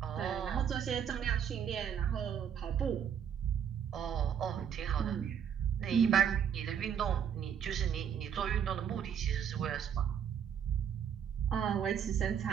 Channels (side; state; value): left; quieter; 8.2 dB